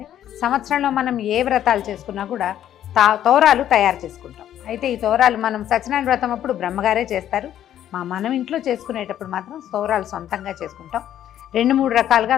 సంవత్సరంలో మనం ఏ వ్రతాలు చేసుకున్నా కూడా తోరాలు తయారు చేసుకుంటాం. అయితే ఈ తోరాలు మనం సత్యనారాయణ వ్రతం అప్పుడు బ్రహ్మగారే చేస్తారు. మనం ఇంట్లో చేసుకునేటప్పుడు మాత్రం తోరాలు సొంతంగా చేసుకుంటాం. 2-3 రకాలుగా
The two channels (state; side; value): quieter; right; 11.2 dB